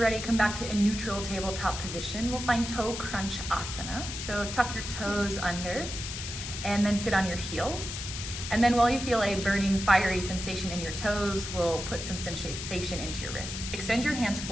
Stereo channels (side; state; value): left; noise; hiss, 7 dB below the sound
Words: come back to a neutral tabletop position. We'll find toe crunch asana. So tuck your toes under and then sit on your heels. And then while you feel a burning, fiery sensation in your toes, we'll put some sensation into your wrists. Extend your hands